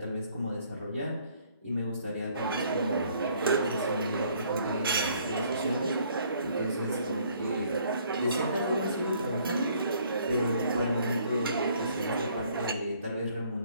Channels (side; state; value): both; inverted; correlation -0.62